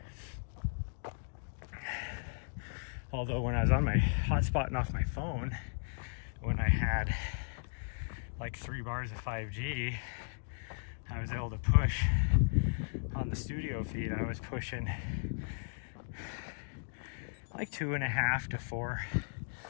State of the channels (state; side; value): silent; right; digital silence